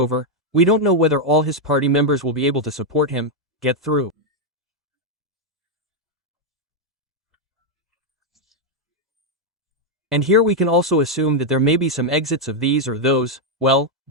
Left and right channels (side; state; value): both; normal; correlation 0.00